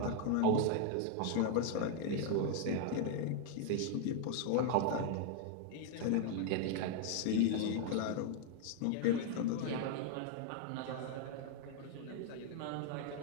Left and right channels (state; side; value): different; both; correlation 0.00